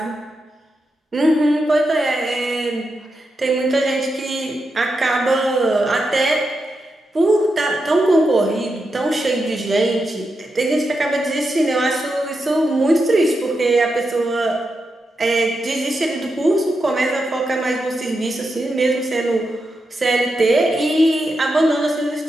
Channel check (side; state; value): both; normal; correlation 0.86